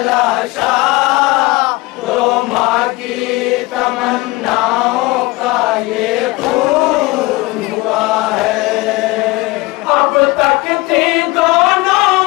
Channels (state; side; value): quieter; right; 21.8 dB